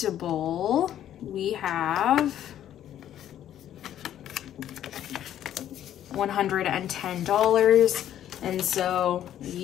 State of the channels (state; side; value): quieter; right; 11.2 dB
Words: we have $110. And so